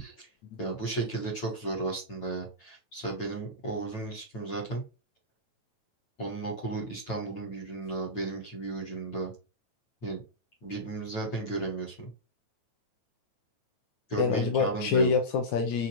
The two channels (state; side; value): late; right; 9.0 ms